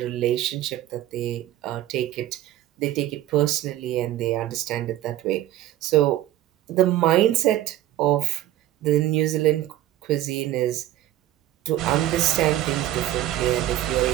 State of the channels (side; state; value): left; quieter; 13.7 dB